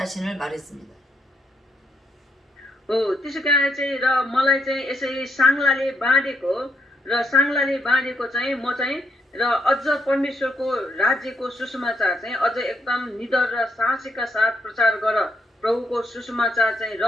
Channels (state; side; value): normal; both; correlation 0.77